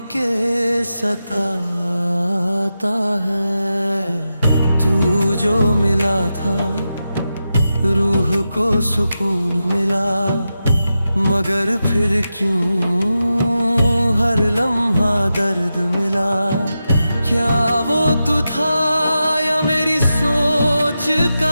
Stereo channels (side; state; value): both; inverted; correlation -0.90